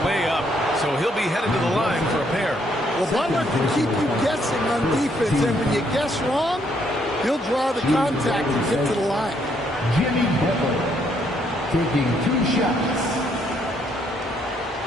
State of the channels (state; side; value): normal; both; correlation 0.71